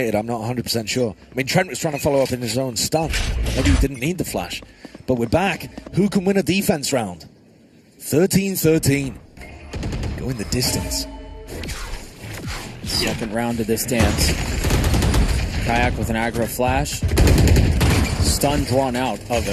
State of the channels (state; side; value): identical; both; correlation 1.00